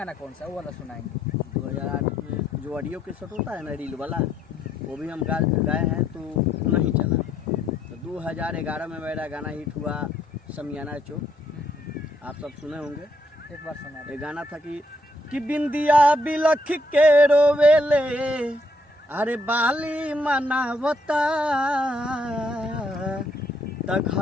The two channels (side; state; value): both; normal; correlation 0.72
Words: कौन सा है वो वाला सुनाएंगे? 2008 में जो ऑडियो के सेट होता है ना, रील वाला, वो भी हम गाए हैं तो नहीं चला। तो 2011 में मेरा गाना हिट हुआ समियाना चौक, आप सब सुने होंगे। एक बार सुना। ये गाना था कि बिंदिया बिलख के रोवेले, अरे बाली मनावता, त